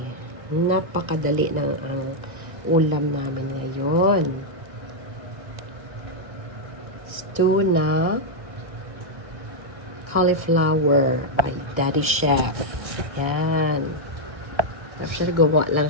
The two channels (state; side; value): late; left; 1.5 ms